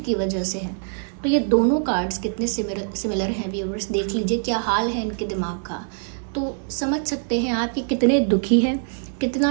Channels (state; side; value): silent; left; 63 dB below the other